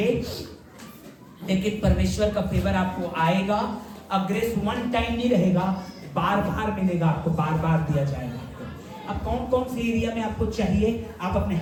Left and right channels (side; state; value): both; identical; correlation 1.00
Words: लेकिन परमेश्वर का फेवर आपको आएगा। अब ग्रेस वन टाइम नहीं रहेगा, बार बार मिलेगा आपको, बार बार दिया जाएगा आपको। अब कौन कौन सी एरिया में आपको चाहिए, आप अपने